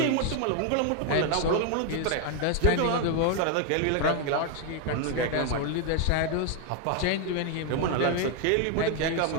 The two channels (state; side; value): different; both; correlation 0.00